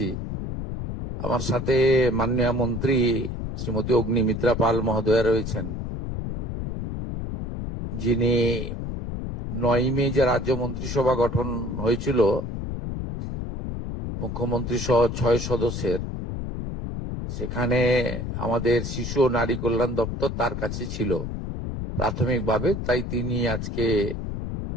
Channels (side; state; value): left; noise; rumble, 5 dB below the sound